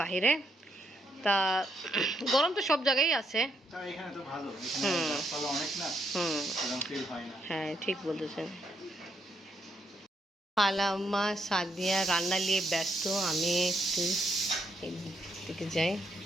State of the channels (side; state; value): both; normal; correlation 0.76